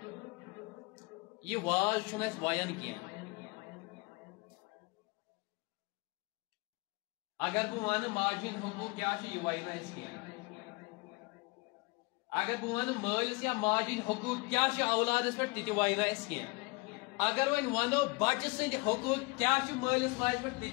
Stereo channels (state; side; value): quieter; right; 27.1 dB